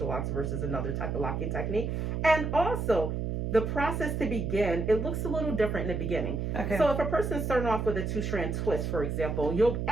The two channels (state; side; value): noise; right; hum, 2 dB below the sound